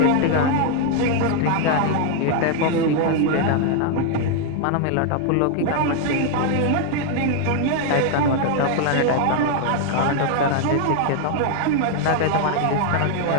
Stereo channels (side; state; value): both; different; correlation 0.00